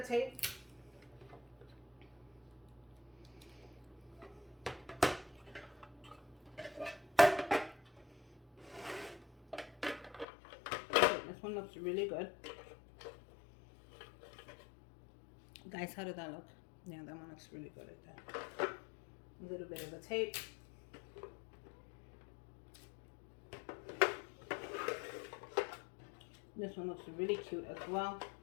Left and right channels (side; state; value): right; drops out; at 10.2 s